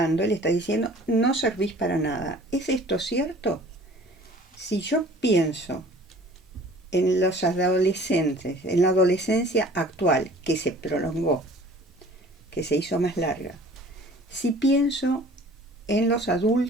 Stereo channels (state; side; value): normal; both; correlation 0.49